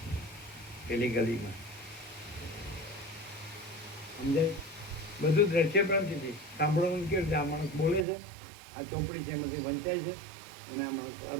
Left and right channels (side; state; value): left; drops out; at 8.1 s